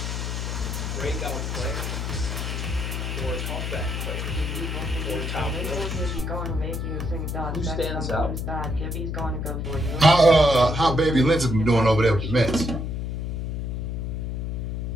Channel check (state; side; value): noise; left; hum, 3 dB below the sound